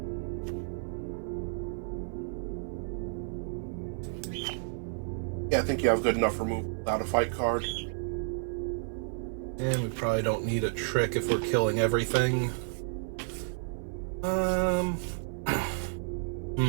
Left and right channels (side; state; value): left; silent; 57 dB below the other